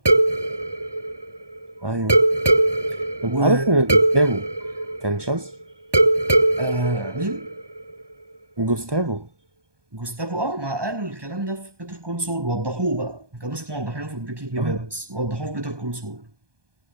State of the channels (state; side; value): late; left; 1.2 ms